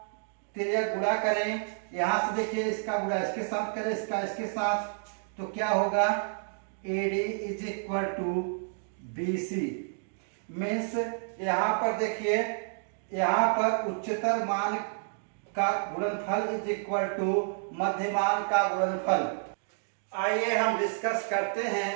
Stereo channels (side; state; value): left; silent; digital silence